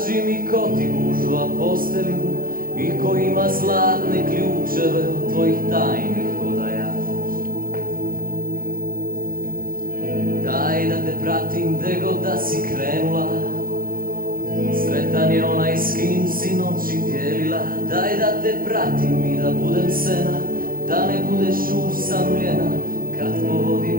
mi ko ti gužva postelju i ko ima zlatne ključeve od tvojih tajnih odaja. Daj da te pratim gde god da si krenula, sretan je onaj s kim si noći dijelila. Daj da te pratim i da budem sena, da ne budeš usamljena kad po vodi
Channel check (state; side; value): late; left; 0.41 ms